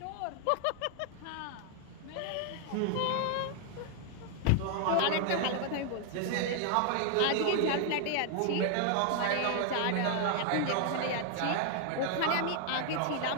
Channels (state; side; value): different; both; correlation 0.00